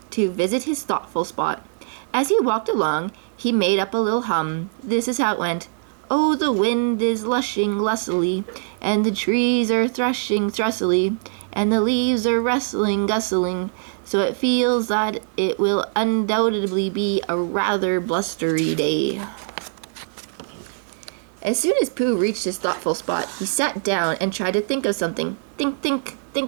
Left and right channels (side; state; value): left; silent; digital silence